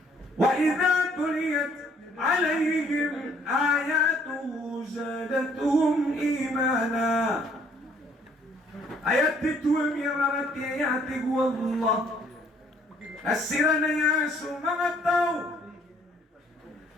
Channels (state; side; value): normal; both; correlation 0.62